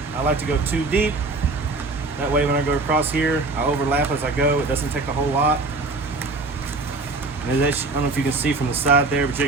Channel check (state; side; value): quieter; left; 3.4 dB